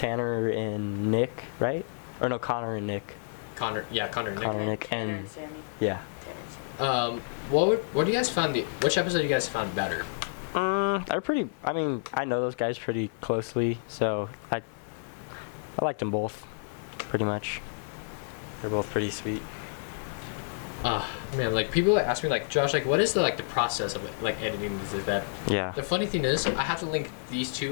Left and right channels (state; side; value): silent; right; 58 dB below the other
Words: and Nick, right? Or no, Connor and Nick. Connor and Nick. Connor and Nick Tanner and Sammy. yeah. Tanner and Sammy. What do you guys found which episode you guys found better? They're pretty. I mean, I know those guys pretty closely, so I liked them both, pretty much. They're both pretty sweet. Man, like people ask me like, Josh, like what is the process of like editing this is that? Yeah. The funny thing is I have to link these